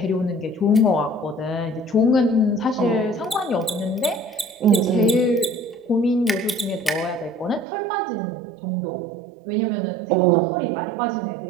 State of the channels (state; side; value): drops out; left; at 7.7 s